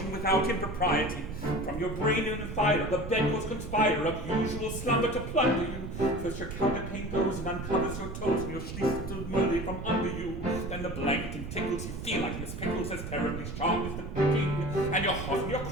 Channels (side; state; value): right; noise; rumble, 7 dB below the sound